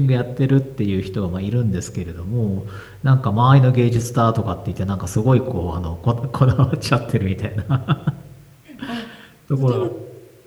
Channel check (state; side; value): identical; both; correlation 1.00